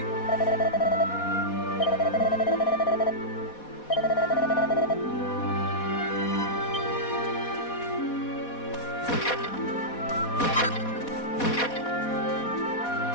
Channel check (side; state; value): right; late; 4.1 ms